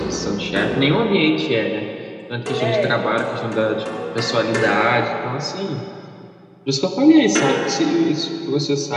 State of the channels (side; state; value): both; identical; correlation 1.00